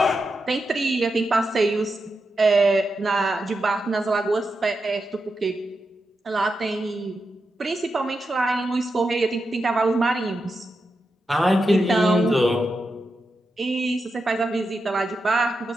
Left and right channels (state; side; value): normal; both; correlation 0.87